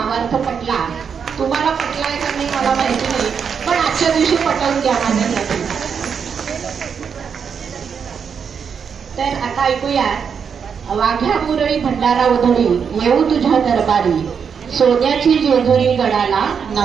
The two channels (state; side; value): quieter; left; 6.7 dB